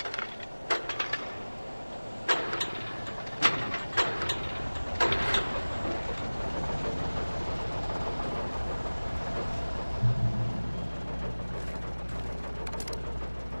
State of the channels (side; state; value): both; inverted; correlation -1.00